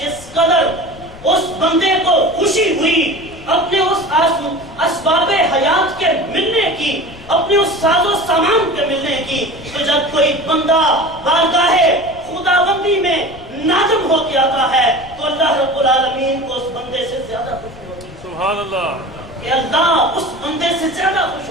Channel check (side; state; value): left; noise; rumble, 19 dB below the sound